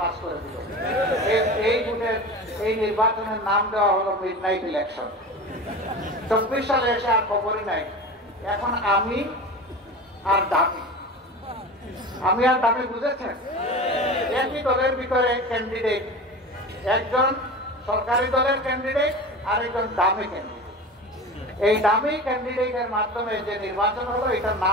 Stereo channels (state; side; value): normal; both; correlation 0.32